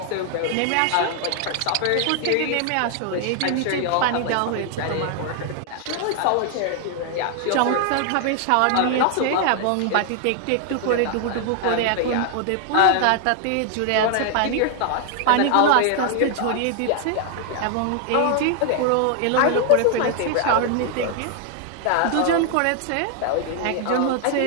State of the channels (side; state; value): both; different; correlation 0.00